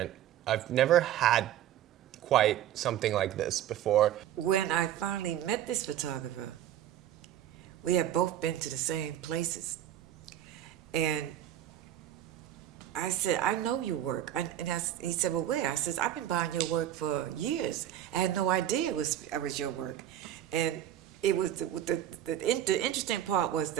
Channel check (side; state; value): left; quieter; 11.6 dB